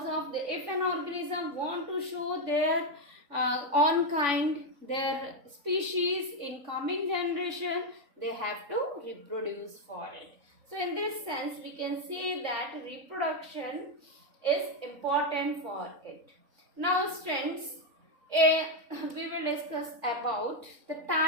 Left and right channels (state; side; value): late; left; 3.6 ms